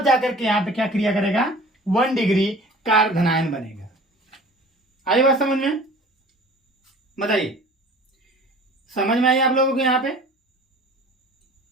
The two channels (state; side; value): normal; both; correlation 0.45